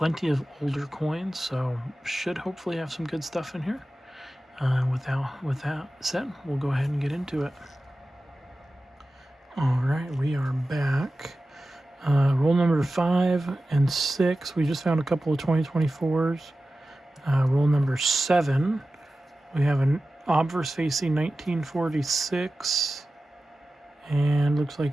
of older coins, so should hopefully have some good stuff in here. With that said, we'll go ahead and get into it. Alright, we are back. Roll number 5 and 6, we just found a couple of 2024s. Roll number 7, we have an obverse facing 1946, and looks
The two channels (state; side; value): normal; both; correlation 0.94